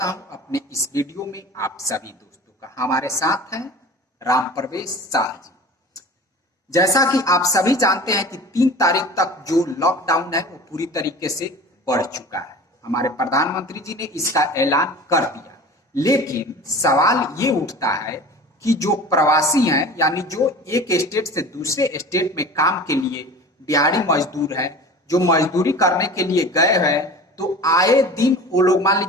हूं अपने इस वीडियो में आप सभी दोस्तों का। हमारे साथ हैं राम प्रवेश शाह जी। जैसा कि आप सभी जानते हैं कि 3 तारीख तक जो लॉकडाउन है वो पूरी तरीके से बढ़ चुका है। हमारे प्रधानमंत्री जी ने इसका ऐलान कर दिया, लेकिन सवाल ये उठता है कि जो प्रवासी हैं, यानी जो एक स्टेट से दूसरे स्टेट में काम के लिए दिहाड़ी मजदूर हैं, जो मजदूरी करने के लिए गए हैं, तो आए दिन वो लोग, मान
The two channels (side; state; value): both; normal; correlation 0.38